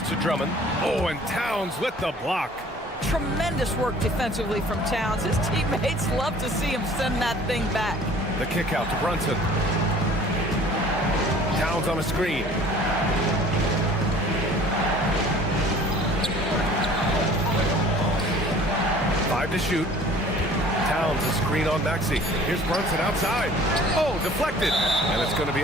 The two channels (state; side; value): normal; both; correlation 0.49